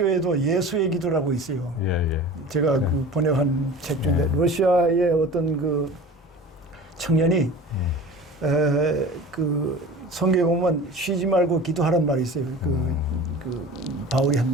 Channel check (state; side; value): normal; both; correlation 0.38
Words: 예수의 기도라고 있어요. 제가 번역한 책 중에 러시아의 어떤 청년이 성경에 보면 쉬지 말고 기도하란 말이 있어요. 바울이 한